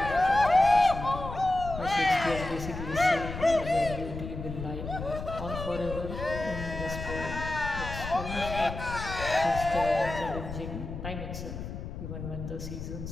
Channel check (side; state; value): left; noise; rumble, 8 dB below the sound